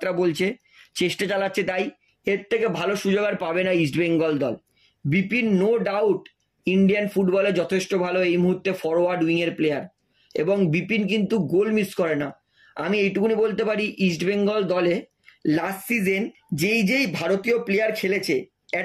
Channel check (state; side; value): identical; both; correlation 1.00